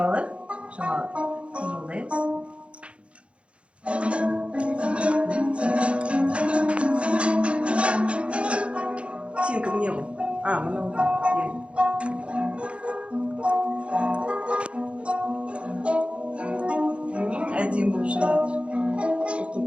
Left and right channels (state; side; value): late; left; 0.060 ms